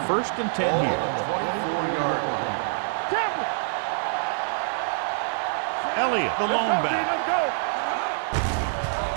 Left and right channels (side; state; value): left; silent; digital silence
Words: 1st and 10 here. Elliott, the lone back,